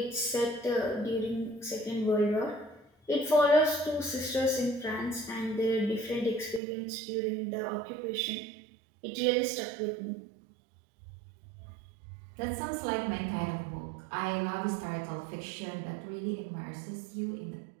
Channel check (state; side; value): drops out; left; at 6.6 s